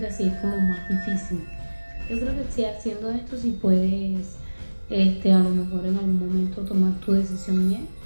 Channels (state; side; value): inverted; both; correlation -1.00